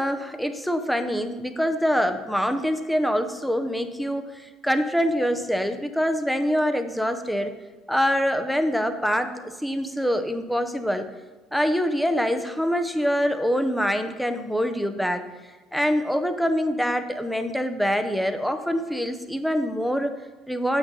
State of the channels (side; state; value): both; normal; correlation 0.90